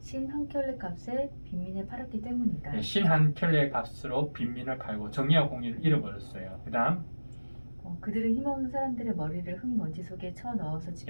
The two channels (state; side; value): inverted; both; correlation -1.00